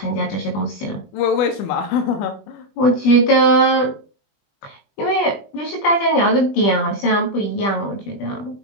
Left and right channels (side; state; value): right; late; 20 ms